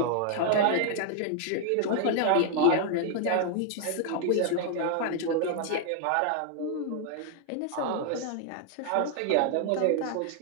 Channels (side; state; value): both; different; correlation 0.00